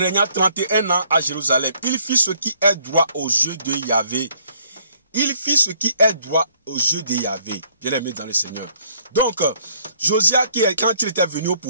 31 ans à Jérusalem. Il fit ce qui est droit aux yeux de Yahvé. Il fit ce qui est droit aux yeux de Yahvé, bien aimé dans le Seigneur. Donc, Josias, quand il était venu au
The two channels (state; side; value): inverted; both; correlation -0.63